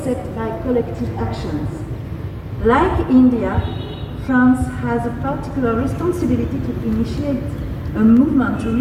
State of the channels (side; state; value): both; identical; correlation 1.00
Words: by collective actions. Like India, France has a particular responsibility to initiate a movement to